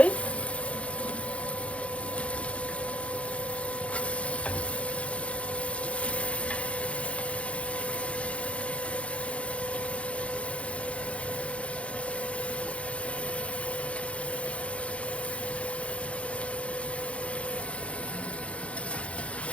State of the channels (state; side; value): late; right; 0.062 ms